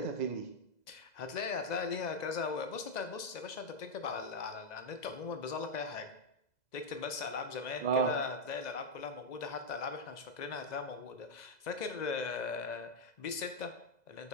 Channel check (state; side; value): late; right; 2.0 ms